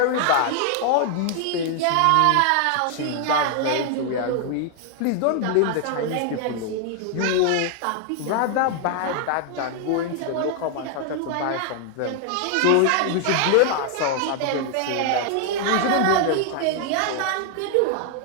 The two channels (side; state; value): both; different; correlation 0.00